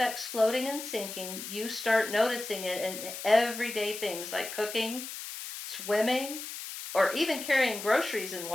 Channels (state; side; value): noise; left; hiss, 9 dB below the sound